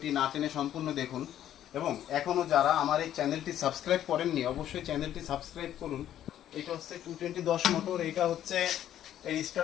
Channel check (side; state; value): right; quieter; 11.4 dB